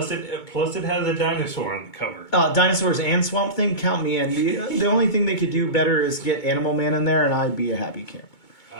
it has a dinosaur on the cover. Dinosaurs and Swamp Thing, count me in. The only thing they could do better is get Animal Man in there, and I'd be a happy camper.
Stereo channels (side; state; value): right; late; 2.2 ms